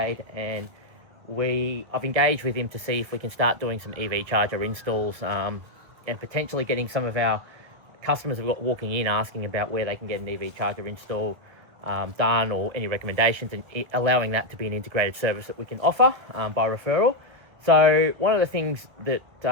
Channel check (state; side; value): late; left; 2.0 ms